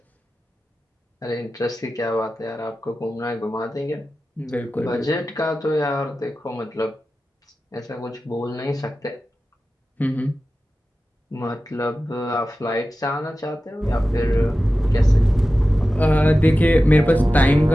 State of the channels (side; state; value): both; normal; correlation 0.94